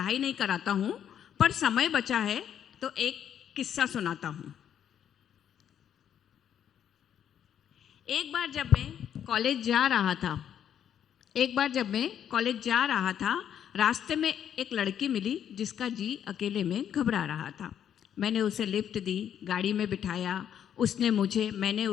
नहीं कराता हूँ, पर समय बचा है तो एक किस्सा सुनाता हूँ. एक बार जब मैं कॉलेज जा रहा था, रास्ते में एक लड़की मिली जिसका जी अकेले में घबरा रहा था. मैंने उसे लिफ्ट दी, गाड़ी में बिठाया. मैंने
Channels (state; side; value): quieter; right; 9.4 dB